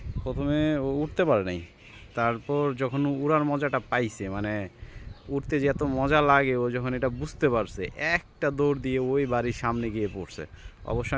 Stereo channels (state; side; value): identical; both; correlation 1.00